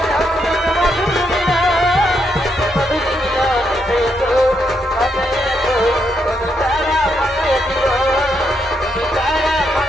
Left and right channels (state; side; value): normal; both; correlation 0.79